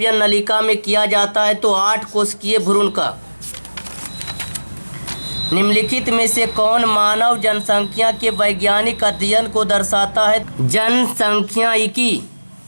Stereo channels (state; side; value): inverted; both; correlation -1.00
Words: नलिका में किया जाता है? तो 8 कोशिकीय भ्रूण का। निम्नलिखित में से कौन मानव जनसंख्या के वैज्ञानिक अध्ययन को दर्शाता है? जनसंख्यायिकी।